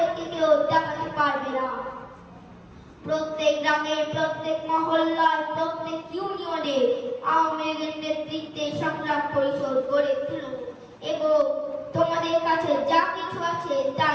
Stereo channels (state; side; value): identical; both; correlation 1.00